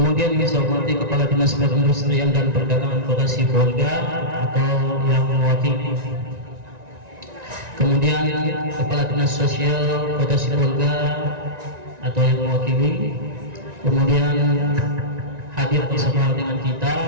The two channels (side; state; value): left; late; 1.9 ms